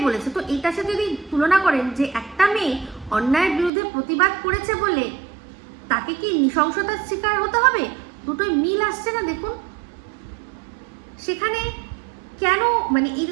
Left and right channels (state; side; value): drops out; left; at 3.7 s